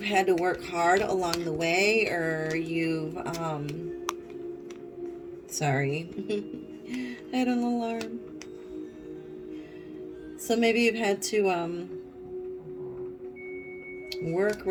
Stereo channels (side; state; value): both; identical; correlation 1.00